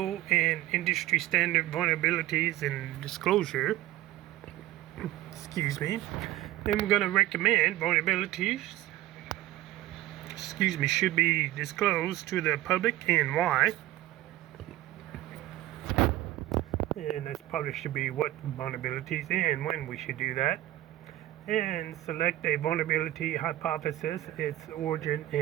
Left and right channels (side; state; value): left; quieter; 15.5 dB